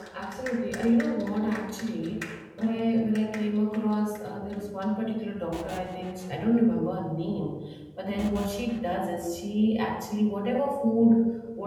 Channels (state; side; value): identical; both; correlation 1.00